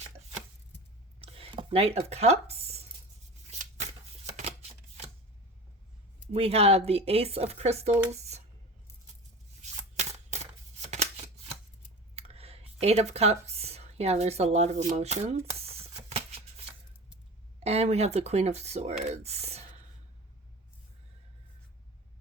Knight of Cups. We have the Ace of Crystals. 8 of Cups. Yeah, there's a lot of emotions. And we have the Queen of Swords.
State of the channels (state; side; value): normal; both; correlation 0.34